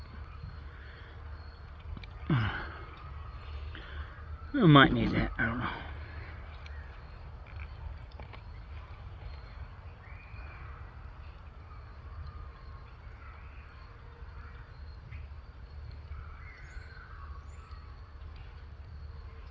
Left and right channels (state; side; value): identical; both; correlation 1.00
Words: I might need that, I don't know.